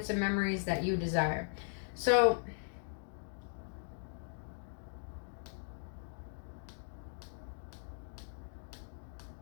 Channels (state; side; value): silent; right; digital silence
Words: and memories that you desire. So,